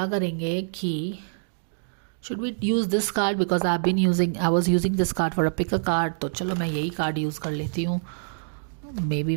करेंगे कि should we use this card, because I was using this card for a pick a card. तो चलो मैं यही कार्ड यूज़ कर लेती हूँ। Maybe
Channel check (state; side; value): silent; left; digital silence